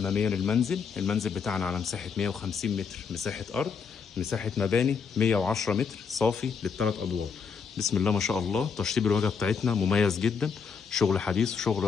للمنزل. المنزل بتاعنا على مساحة 150 متر مساحة أرض، مساحة مباني 110 متر صافي للثلاث أدوار. بسم الله ما شاء الله. تشطيب الواجهة بتاعتنا مميز جدا، شغل حديث وشغل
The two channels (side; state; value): right; quieter; 6.1 dB